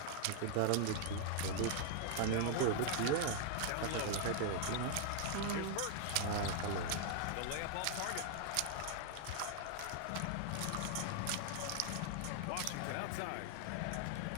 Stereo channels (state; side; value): different; both; correlation 0.00